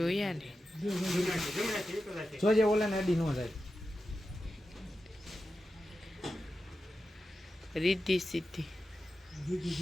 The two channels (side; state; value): both; normal; correlation 0.91